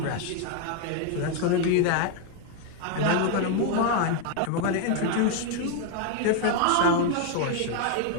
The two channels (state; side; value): different; both; correlation 0.00